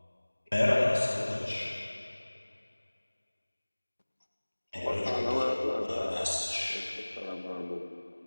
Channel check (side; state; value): both; inverted; correlation -1.00